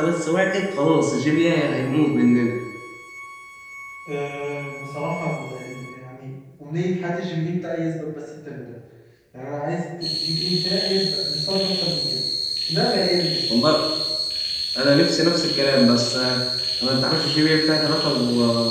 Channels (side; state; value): both; identical; correlation 1.00